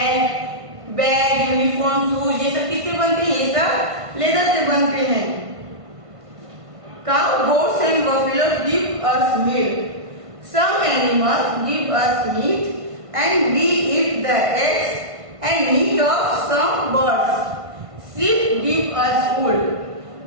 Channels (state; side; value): late; left; 1.5 ms